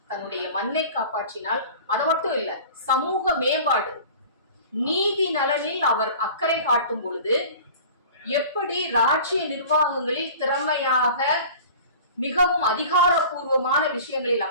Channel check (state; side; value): inverted; both; correlation -0.41